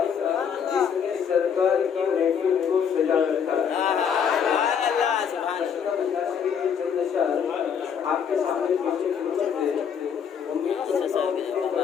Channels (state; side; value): quieter; right; 7.4 dB